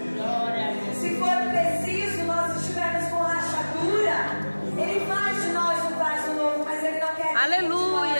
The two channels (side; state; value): both; inverted; correlation -1.00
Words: Se for preciso, nós estivermos com rachadura, Ele faz de nós um vaso novo, mas Ele não quer que